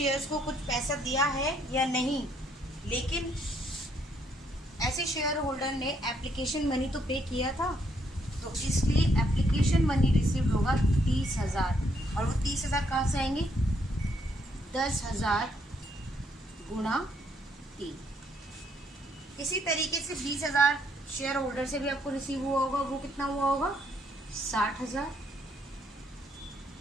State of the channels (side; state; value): both; normal; correlation 0.71